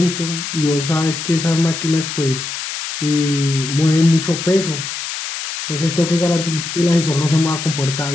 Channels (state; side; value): noise; left; hiss, 6 dB below the sound